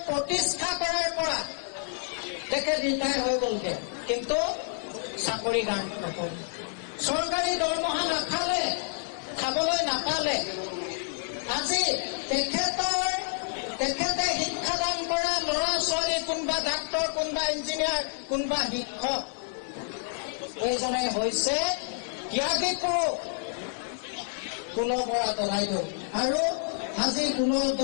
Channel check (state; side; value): silent; right; digital silence